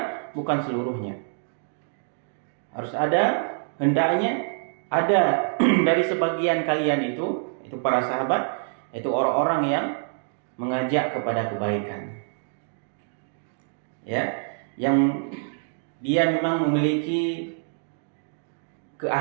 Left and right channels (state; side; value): silent; left; digital silence